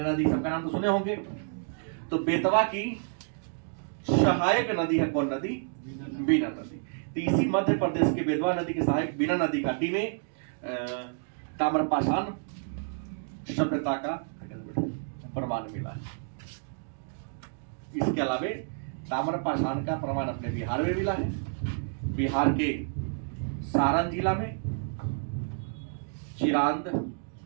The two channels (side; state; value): left; silent; digital silence